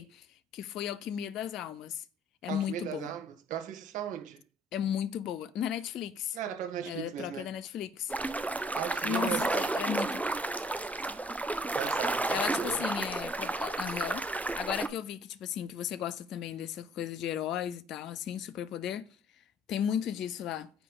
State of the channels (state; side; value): normal; both; correlation 0.59